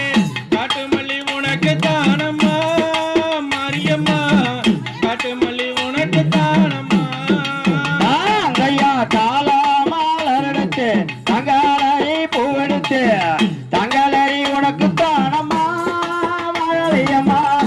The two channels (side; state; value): both; identical; correlation 1.00